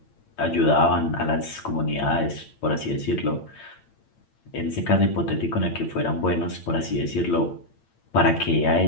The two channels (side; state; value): right; late; 8.8 ms